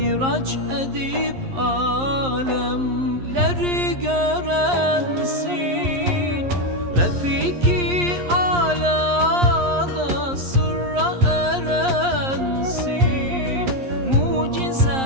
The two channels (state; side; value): late; left; 11 ms